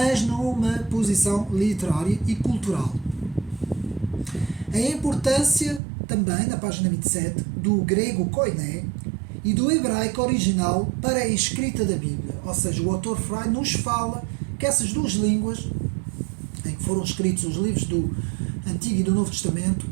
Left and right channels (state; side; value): drops out; left; at 5.8 s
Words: numa posição literária e cultural. A importância também, na página 27, do grego koiné e do hebraico original para a escrita da Bíblia. Ou seja, o autor Freud nos fala que essas duas línguas, em que foram escritos os livros do Antigo e do Novo Testamento,